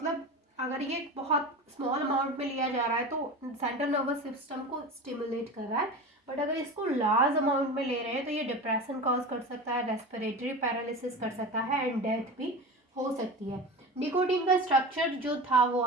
अगर ये बहुत स्मॉल अमाउंट में लिया जा रहा है तो सेंट्रल नर्वस सिस्टम को स्टिमुलेट कर रहा है, बट अगर इसको लार्ज अमाउंट में ले रहे हैं तो ये डिप्रेशन कॉज कर सकता है, रेस्पिरेटरी पैरालिसिस कर सकता है एंड डेथ भी हो सकती है। निकोटीन का स्ट्रक्चर जो था वो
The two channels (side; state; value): both; normal; correlation 0.29